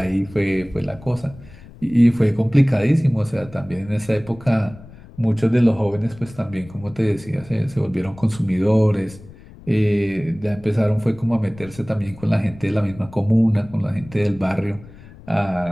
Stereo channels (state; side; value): noise; left; rumble, 20 dB below the sound